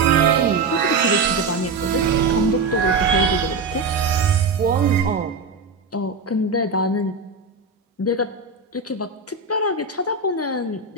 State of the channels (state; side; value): quieter; left; 4.2 dB